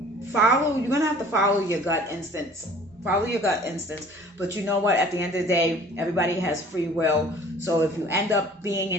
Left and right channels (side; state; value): both; normal; correlation 0.50